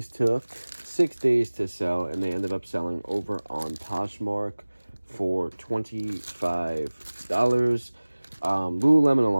took 6 days to sell, and they ended up selling over on Poshmark for $25. Lululemon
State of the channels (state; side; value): inverted; both; correlation -1.00